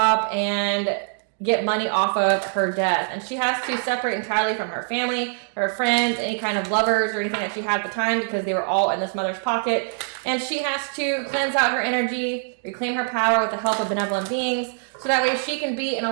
and get money off of her death. And she has to separate entirely from her family, her friends, any kind of lovers or anything that she had at the time because they were all in this mother's pocket. And she has to cleanse out her energy, reclaim her power with the help of benevolent beings, so that way she can be in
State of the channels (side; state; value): left; silent; digital silence